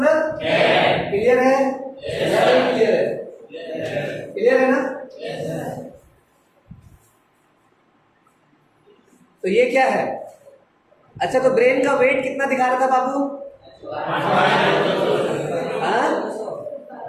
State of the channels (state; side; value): identical; both; correlation 1.00